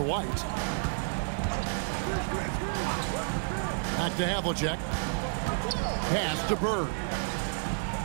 White. Back to Havlicek. Pass to Bird.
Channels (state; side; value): silent; left; digital silence